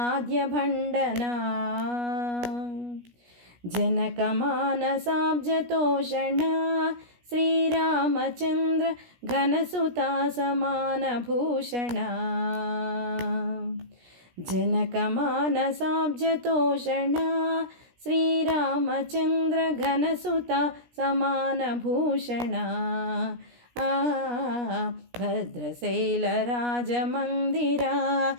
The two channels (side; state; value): left; late; 17 ms